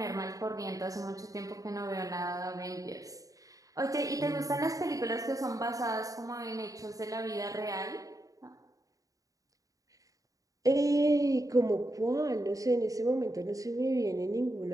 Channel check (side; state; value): left; late; 0.17 ms